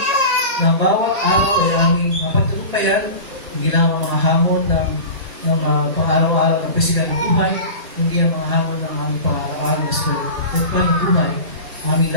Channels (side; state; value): both; inverted; correlation -0.32